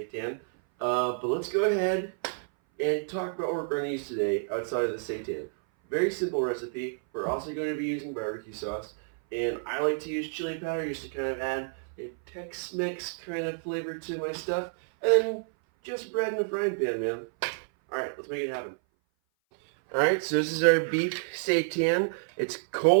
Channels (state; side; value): silent; left; 57 dB below the other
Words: But let's go ahead and talk about what we're going to use today outside of the seitan. Very simple recipe. We're also going to be using barbecue sauce, and I like to use chili powder just to kind of add a Tex-Mex kind of flavor to my stuff, and then just bread in a frying pan, man. Alright, let's make it happen. Alright, so this is our beef seitan. It's